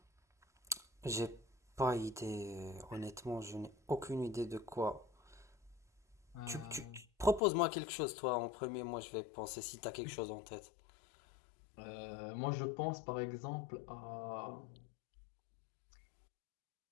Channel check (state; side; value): drops out; right; at 7.4 s